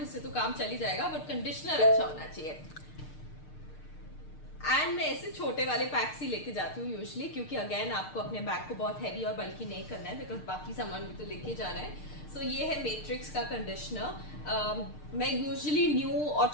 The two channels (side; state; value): right; late; 6.6 ms